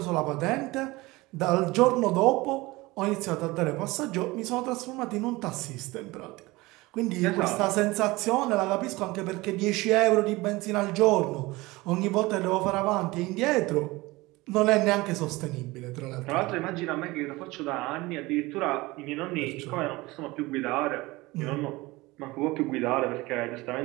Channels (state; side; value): quieter; left; 21.2 dB